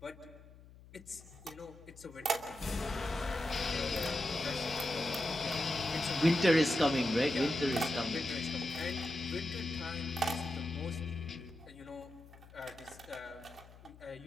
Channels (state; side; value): noise; left; hum, 21 dB below the sound